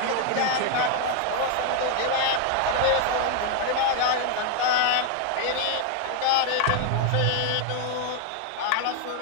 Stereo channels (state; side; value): different; both; correlation 0.00